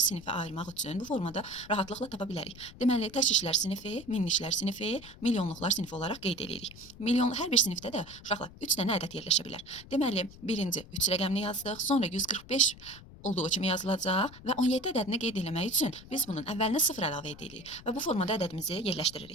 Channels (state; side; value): noise; left; rumble, 18 dB below the sound